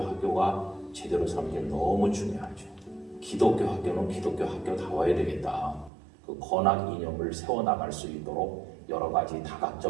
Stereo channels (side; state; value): left; drops out; at 5.9 s